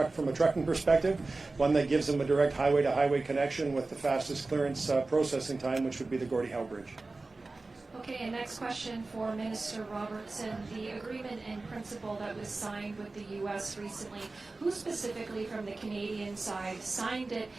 a trucking perspective, one that gives them a direct highway-to-highway connection with the fastest clearance processing time, which would be the Gordie Howe Bridge. Okay, and next question for Minister Robertson. The agreement in principle that was signed with the U.S. recently, who specifically from the Canadian side signed it?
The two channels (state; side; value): quieter; left; 3.4 dB